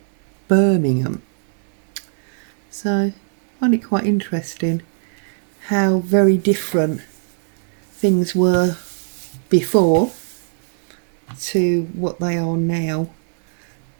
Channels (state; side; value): silent; left; digital silence